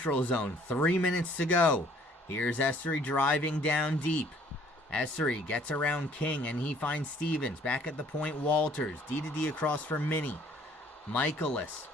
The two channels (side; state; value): both; normal; correlation 0.59